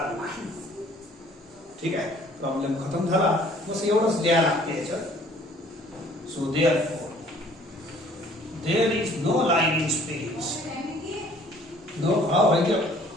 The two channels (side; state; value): both; normal; correlation 0.56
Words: नाही. ठीक आहे, प्रॉब्लेम खतम झाला. बस एवढंच द्या लागते याच्यात. So there is no line in space.